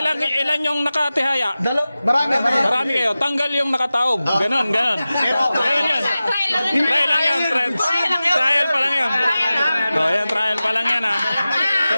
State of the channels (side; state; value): both; inverted; correlation -0.95